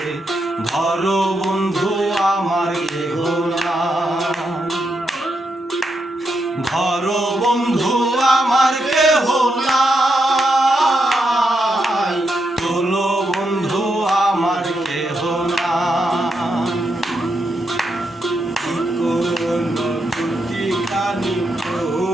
ধরো বন্ধু আমার কেহ না। ধরো বন্ধু আমার কেহ না, তোলো বন্ধু আমার কেহ না। কোন দুটি কানি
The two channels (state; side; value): normal; both; correlation 0.82